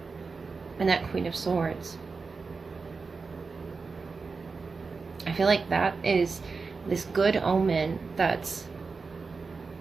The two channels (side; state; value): left; quieter; 4.5 dB